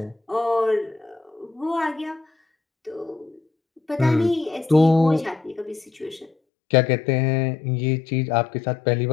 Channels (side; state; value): right; drops out; at 6.3 s